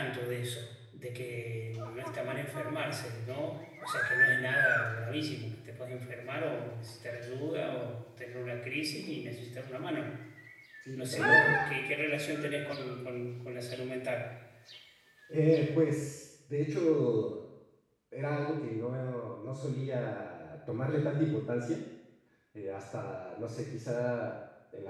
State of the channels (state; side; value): identical; both; correlation 1.00